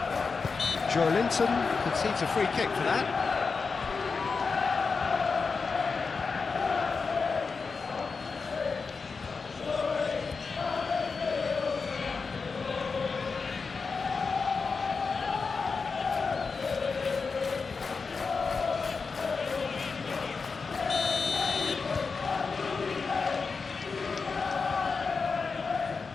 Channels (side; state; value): right; quieter; 4.8 dB